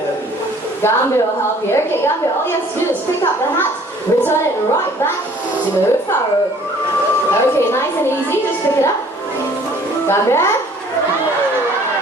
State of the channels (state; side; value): normal; both; correlation 0.55